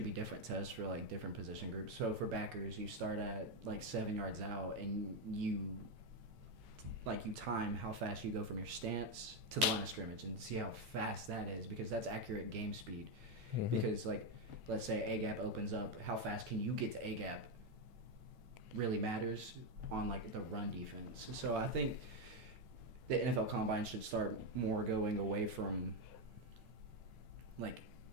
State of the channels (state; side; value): late; left; 8.9 ms